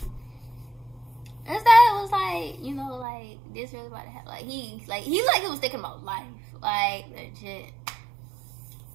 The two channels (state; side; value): drops out; left; at 3.1 s